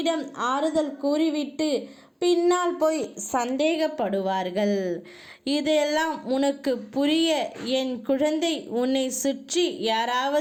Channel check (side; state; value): both; identical; correlation 1.00